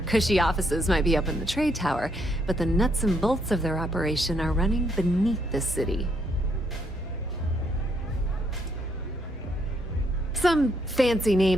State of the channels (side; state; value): both; normal; correlation 0.74